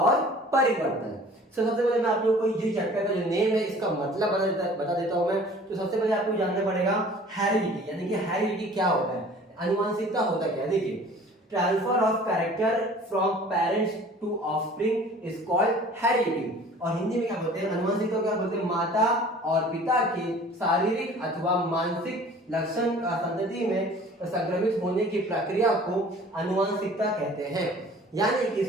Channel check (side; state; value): both; normal; correlation 0.48